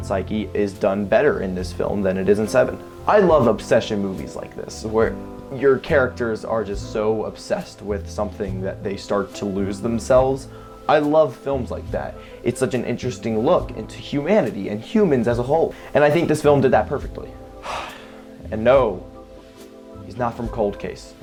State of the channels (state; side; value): identical; both; correlation 1.00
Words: psyche is done better in this film than it is in Seven. I love obsession movies like this, where your characters are just so obsessed with something that they start to lose themselves. I love films like that. It's such an interesting look into humanity and humans as a whole. And I think this film did that perfectly. And no, he's not from Cold Case,